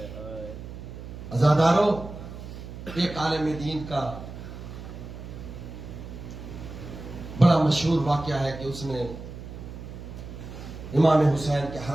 عزاداروں، ایک عالم دین کا بڑا مشہور واقعہ ہے کہ اس نے امام حسین کے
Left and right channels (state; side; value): noise; right; hum, 11 dB below the sound